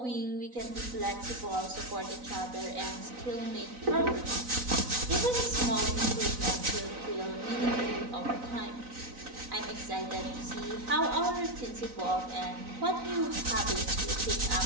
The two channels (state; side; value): late; left; 4.0 ms